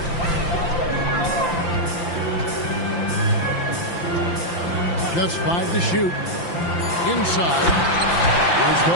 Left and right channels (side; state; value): right; late; 5.8 ms